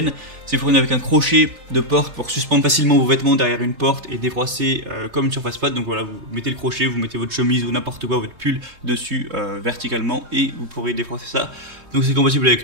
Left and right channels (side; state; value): left; late; 3.4 ms